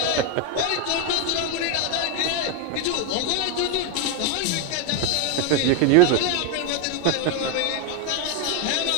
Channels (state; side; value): different; both; correlation 0.01